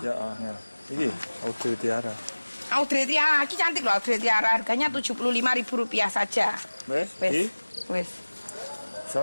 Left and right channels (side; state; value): both; inverted; correlation -1.00